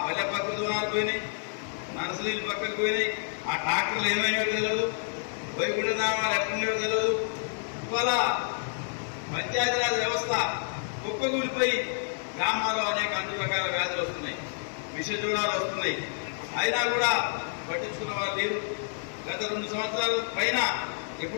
పల్లె ప్రకృతి వనాలు పోయినాయి, నర్సరీలు పక్కకు పోయినాయి, ఆ ట్రాక్టర్లు ఏమైనాయో తెలియదు, వైకుంఠధామాలు ఎట్లున్నాయో తెలియదు. ఇవాళ పంచాయతీరాజ్ వ్యవస్థ కుప్పగూలిపోయి గ్రామాల్లో అనేక అన్ని రకాల వ్యాధులు వస్తున్నాయి, విషజ్వరాలు వస్తున్నాయి. అయినా కూడా పట్టించుకున్న వాళ్ళు లేరు. గత 2 సంవత్సరాల పైన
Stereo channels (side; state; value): right; silent; 59 dB below the other